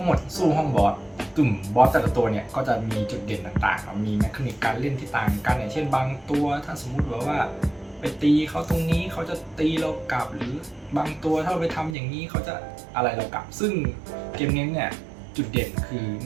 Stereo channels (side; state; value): left; drops out; at 12.0 s